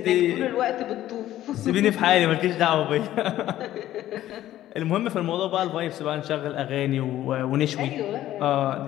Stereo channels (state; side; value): quieter; right; 13.5 dB